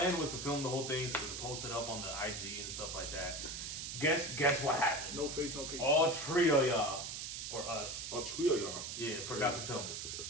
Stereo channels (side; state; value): right; noise; hiss, 5 dB below the sound